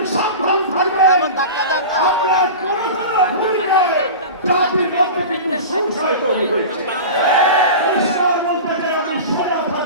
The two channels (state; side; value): inverted; both; correlation -0.31